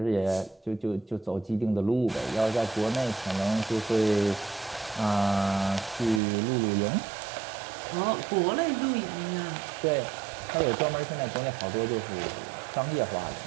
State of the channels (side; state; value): left; drops out; at 6.2 s